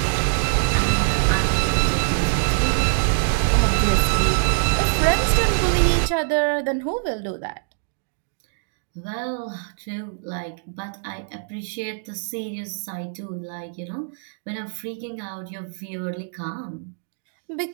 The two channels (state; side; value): silent; left; digital silence